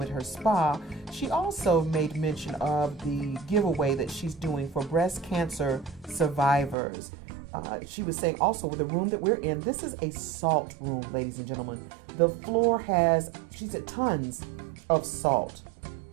at her spa. She also made mention of the giveaway that she's doing for breast cancer survivors. She was saying also with the room that we're in, this is a salt room, ladies and gentlemen. The floor has, she said, tons of salt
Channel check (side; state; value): left; drops out; at 6.8 s